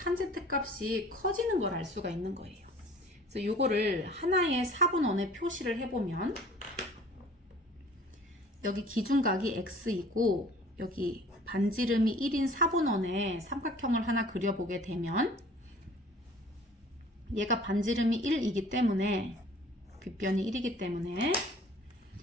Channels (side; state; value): both; normal; correlation 0.49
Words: 값이 커지는 걸 알 수가 있는 거예요. 그래서 이거를 하나의 사분원에 표시를 해보면 여기 기준각이 x이고 여기 반지름이 1인 사분원에 삼각형을 하나 그려보게 되면 얘가 반지름이 1이기 때문에 빗변이 1이기 때문에